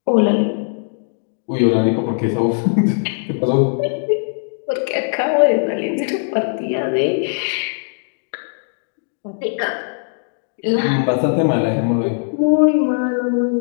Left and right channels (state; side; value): silent; right; digital silence